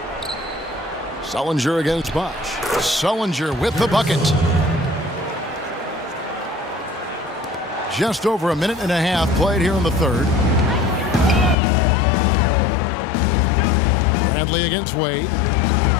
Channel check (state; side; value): drops out; right; at 11.6 s